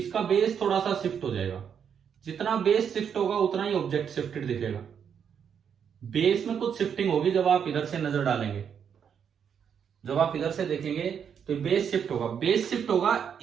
बेस थोड़ा सा शिफ्ट हो जाएगा। जितना बेस शिफ्ट होगा उतना ही ऑब्जेक्ट शिफ्टेड दिखेगा। बेस में कुछ शिफ्टिंग होगी जब आप इधर से नजर डालेंगे, जब आप इधर से देखेंगे तो बेस शिफ्ट होगा। बेस शिफ्ट होगा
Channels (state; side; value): quieter; left; 7.7 dB